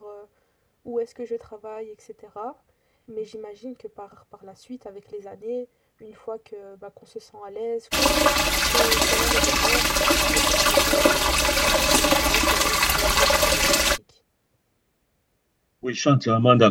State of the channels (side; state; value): both; identical; correlation 1.00